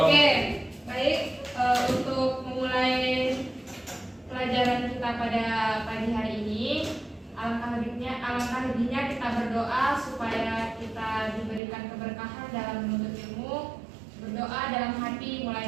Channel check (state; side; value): drops out; left; at 11.6 s